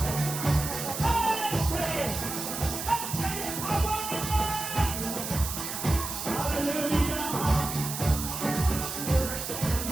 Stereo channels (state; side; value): noise; right; hiss, 5 dB below the sound